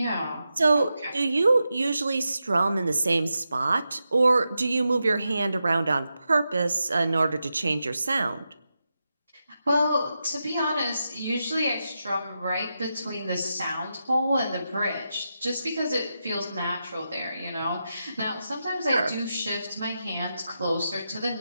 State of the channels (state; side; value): inverted; both; correlation -0.88